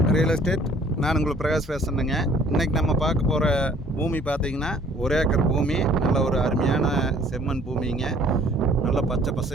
real estate. நான் உங்களுக்கு பிரகாஷ் பேசுகிறேங்க. இன்றைக்கி நம்ம பார்க்க போகிற பூமி பார்த்திங்கன்னா 1 ஏக்கர் பூமி. நல்ல ஒரு அருமையான செம்மண் பூமிங்க. நல்லா பச்சை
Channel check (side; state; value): both; normal; correlation 0.56